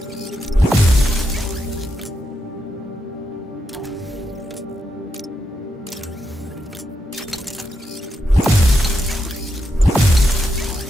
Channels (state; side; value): normal; both; correlation 0.84